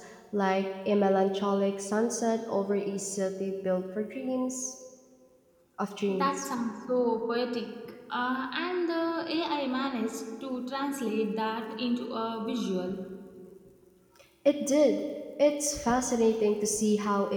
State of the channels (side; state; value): both; identical; correlation 1.00